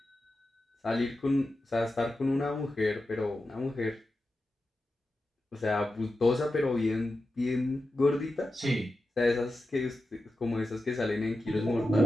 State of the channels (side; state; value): both; normal; correlation 0.91